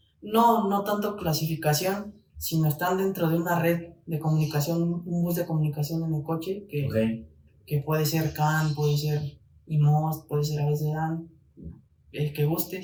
No tanto clasificación, sino están dentro de una red de comunicación, un bus de comunicación en el coche que puede ser CAN, puede ser IMOS, puede ser AVSDAN, el que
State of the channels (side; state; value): both; identical; correlation 1.00